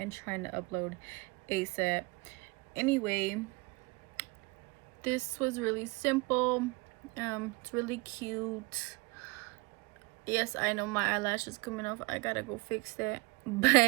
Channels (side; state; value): left; quieter; 26.1 dB